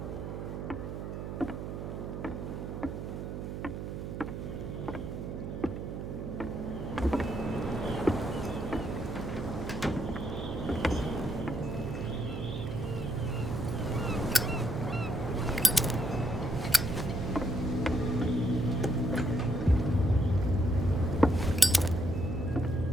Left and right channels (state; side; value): noise; right; hum, 6 dB below the sound